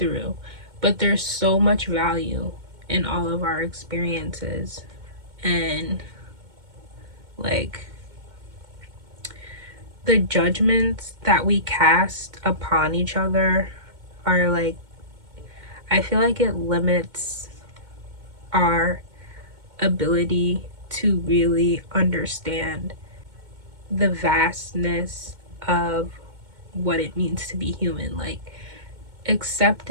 but there's so much value in all of our experiences. And like, the judgments that we cast upon each other are like, I feel like it limits our ability to really understand the vastness of what it means to be human. Like,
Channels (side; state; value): left; late; 2.1 ms